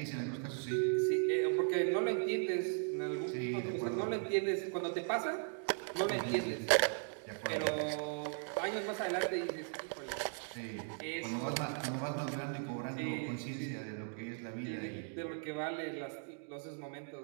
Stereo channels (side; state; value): left; silent; 53 dB below the other